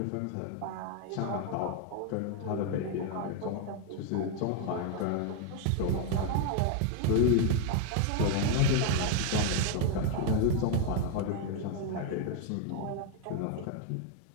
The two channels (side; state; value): both; different; correlation 0.00